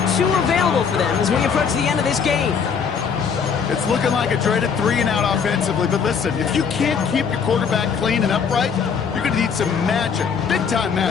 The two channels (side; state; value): right; quieter; 6.4 dB